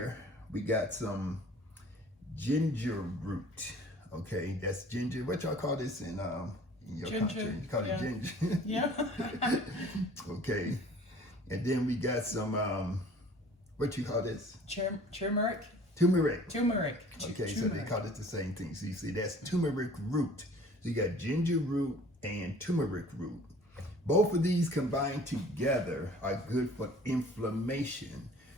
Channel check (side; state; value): both; normal; correlation 0.49